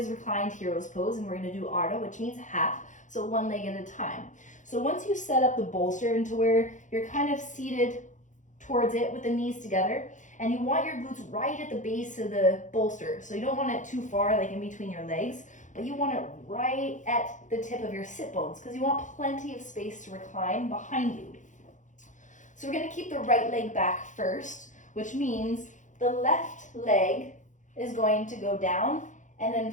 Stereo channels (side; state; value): right; late; 0.36 ms